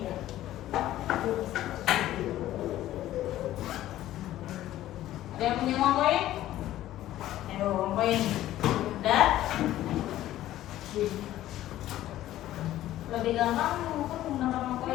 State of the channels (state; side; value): quieter; right; 13.9 dB